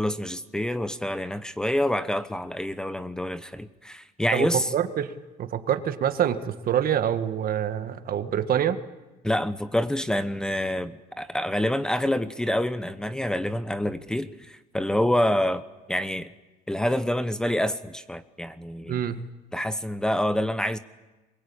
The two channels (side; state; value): both; normal; correlation 0.72